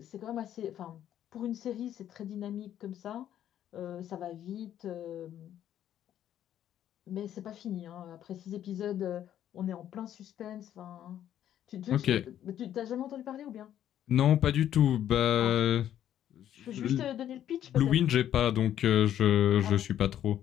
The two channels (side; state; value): right; quieter; 10.9 dB